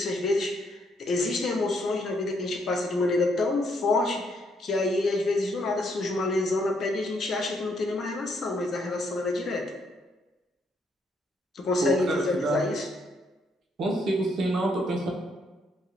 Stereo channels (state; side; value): normal; both; correlation 0.73